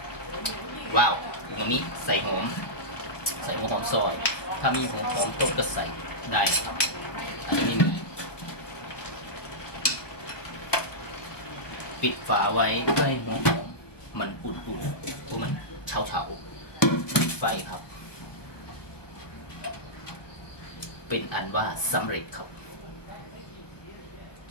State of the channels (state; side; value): late; right; 1.1 ms